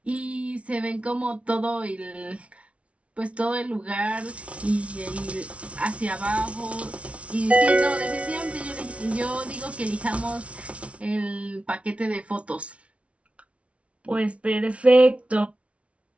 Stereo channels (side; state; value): left; late; 0.062 ms